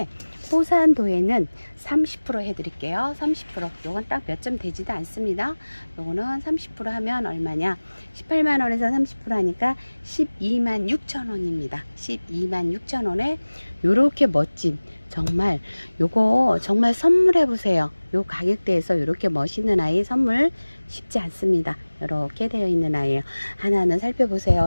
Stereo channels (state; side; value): inverted; both; correlation -1.00